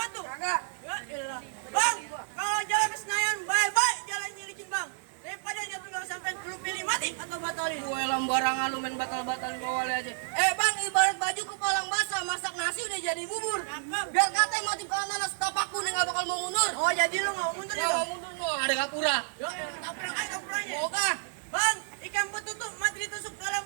Kagak. Ya elah. Bang, kalau jalan ke Senayan baik-baik jalannya licin bang. Daripada jatuh nggak sampai lu pilih mati atau batalin. Gue lambarangan lu main batal-batalin Pak Wali aja. Bang, ibarat baju kepalang basah, masak nasi udah jadi bubur. Biar katanya mati kanan setapakku nih nggak bakal mau mundur. Oh jadi lu nggak mau mundur ya Nggak bang? mau mundur, no, ada kapura. Ya tabrak aja tabrakannya. Oke. Bang, ikan betutuk mati ditusuk dalam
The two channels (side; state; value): left; silent; digital silence